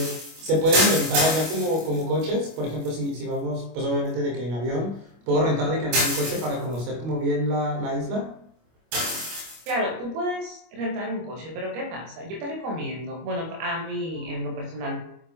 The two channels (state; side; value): late; left; 25 ms